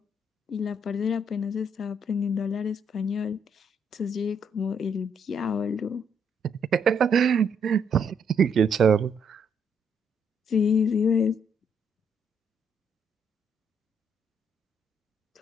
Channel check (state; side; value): normal; both; correlation 0.72